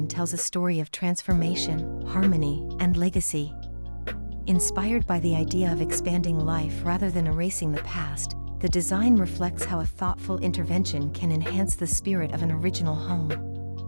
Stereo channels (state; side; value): inverted; both; correlation -1.00